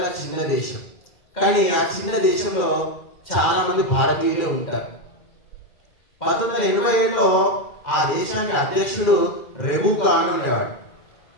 చిన్న దేశం, కానీ ఆ చిన్న దేశంలో చాలా మంది భారతీయులే ఉంటారు. 1987లో ఆ దేశానికి అధ్యక్షుడు రెబుకా అని ఉండేవాడు.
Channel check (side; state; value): right; late; 2.4 ms